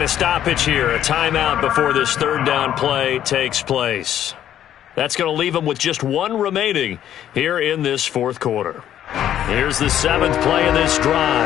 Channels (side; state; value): right; quieter; 11.0 dB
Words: a stoppage here, a timeout before this 3rd down play takes place. That's going to leave him with just 1 remaining here in this 4th quarter. Here's the 7th play of this